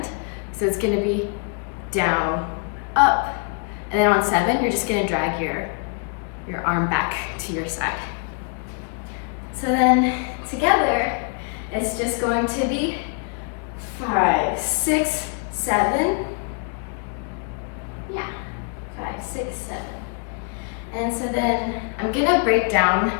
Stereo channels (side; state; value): right; quieter; 39.9 dB